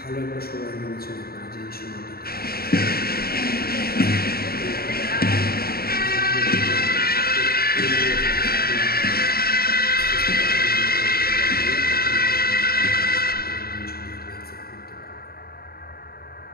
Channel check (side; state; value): right; late; 0.45 ms